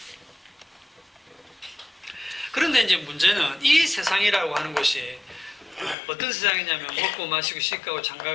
그런데 이제 문제는 이 세상이라고 하는 것이 어떤 세상이냐면 먹고 마시고 씻고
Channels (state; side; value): drops out; right; at 6.0 s